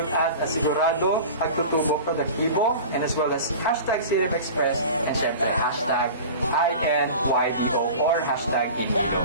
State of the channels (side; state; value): both; inverted; correlation -0.36